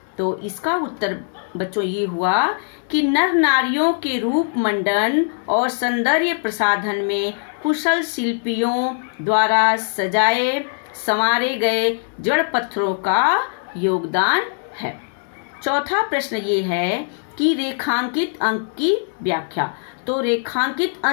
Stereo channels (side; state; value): right; silent; digital silence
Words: तो इसका उत्तर बच्चों ये हुआ कि नर नारियों के रूप मंडन और सौंदर्य प्रसाधन में कुशल शिल्पियों द्वारा सजाए संवारे गए जड़ पत्थरों का योगदान है। चौथा प्रश्न ये है कि रेखांकित अंक की व्याख्या। तो रेखांकित